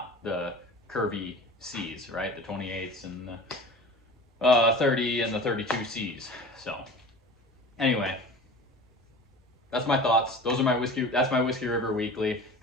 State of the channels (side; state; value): both; normal; correlation 0.38